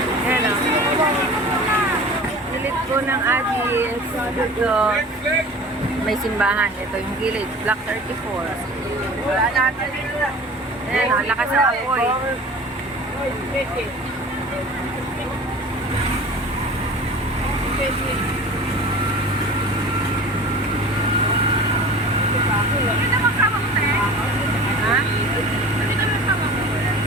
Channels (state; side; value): normal; both; correlation 0.40